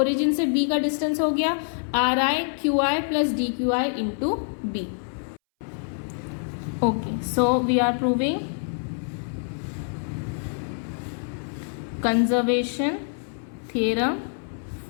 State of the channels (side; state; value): right; silent; 60 dB below the other